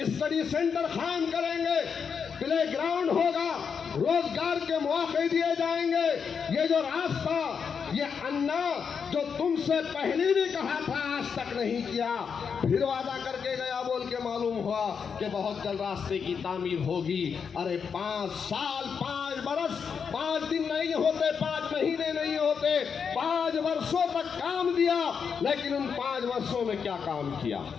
स्टडी सेंटर कायम करेंगे, प्ले ग्राउंड होगा, रोजगार के मौके दिए जाएंगे। ये जो रास्ता, ये अन्ना जो तुमसे पहले भी कहा था आज तक नहीं किया, फिर वादा करके गया बोल के मालूम हुआ कि बहुत जल्द रास्ते की तामीर होगी। अरे 5 साल 5 बरस 5 दिन नहीं होते, 5 महीने नहीं होते, 5 वर्षों तक काम दिया, लेकिन उन 5 वर्षों में क्या काम किया?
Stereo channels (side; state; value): right; quieter; 6.4 dB